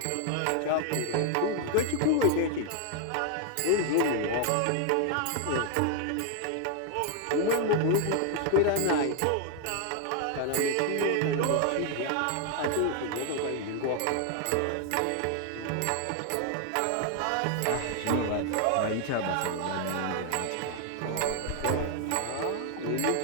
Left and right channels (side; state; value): both; different; correlation 0.00